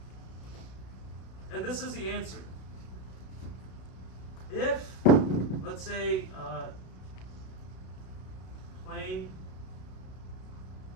And this is the answer. If, let's say, plane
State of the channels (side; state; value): right; late; 32 ms